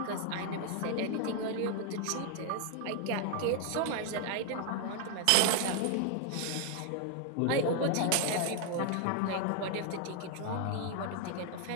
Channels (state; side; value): different; both; correlation 0.00